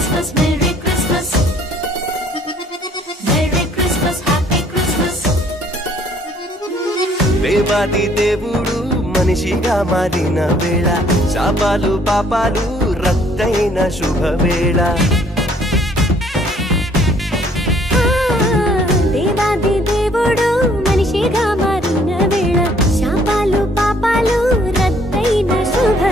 Merry Christmas. Merry Christmas, Happy Christmas. దేవాది దేవుడు మనిషిగా మారిన వేళ, శాపాలు పాపాలు రద్దయిన శుభవేళ. దేవాది దేవుడు మనిషిగా మారిన వేళ, శాపాలు పాపాలు రద్దయిన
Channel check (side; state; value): both; normal; correlation 0.61